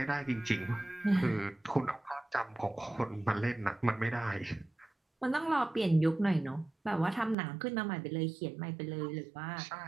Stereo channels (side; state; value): left; drops out; at 7.4 s